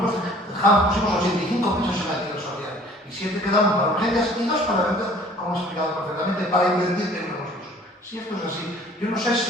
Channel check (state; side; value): normal; both; correlation 0.52